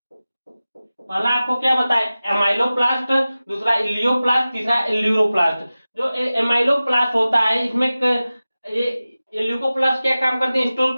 पहला आपको क्या बताया, एमाइलोप्लास्ट, दूसरा इलियोप्लास्ट, तीसरा एल्यूरोप्लास्ट। जो एमाइलोप्लास्ट होता है इसमें ये ल्यूकोप्लास्ट क्या काम करती है, स्टोर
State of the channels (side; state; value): both; inverted; correlation -0.96